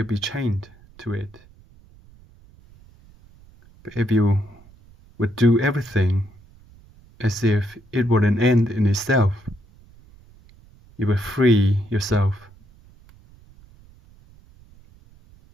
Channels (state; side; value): noise; right; rumble, 26 dB below the sound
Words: be chained to it. But if you would do everything as if it were an end in itself, you will free yourself.